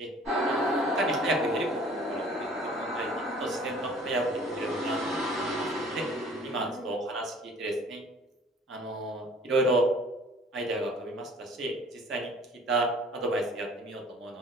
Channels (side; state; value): both; normal; correlation 0.51